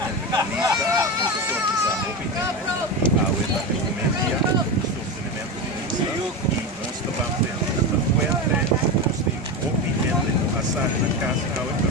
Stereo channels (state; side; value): normal; both; correlation 0.19